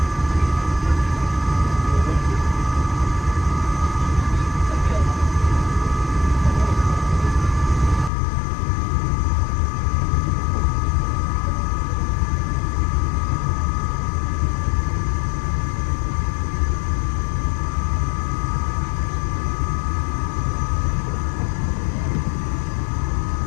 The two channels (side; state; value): right; drops out; at 8.1 s